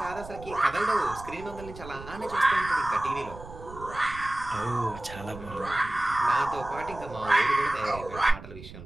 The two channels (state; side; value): noise; right; rumble, 14 dB below the sound